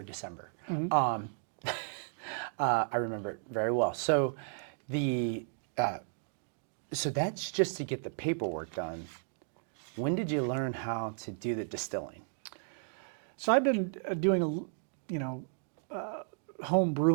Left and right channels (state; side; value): silent; left; digital silence